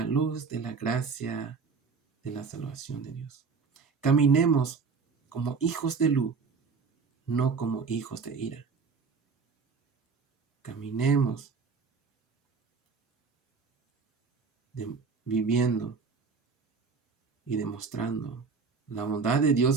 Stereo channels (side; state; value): left; quieter; 5.1 dB